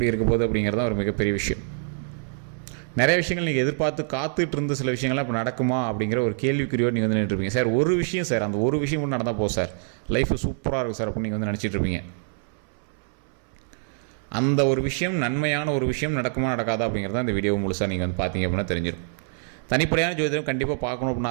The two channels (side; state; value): left; silent; 62 dB below the other